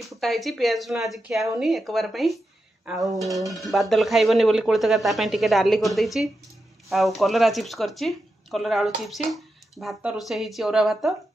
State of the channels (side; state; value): both; normal; correlation 0.88